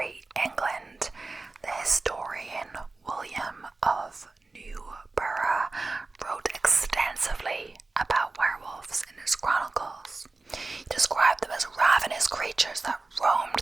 England, the historian William of Newburgh wrote extensively about werewolves in his chronicles. He described them as ravenous creatures that roamed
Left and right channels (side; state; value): left; quieter; 3.5 dB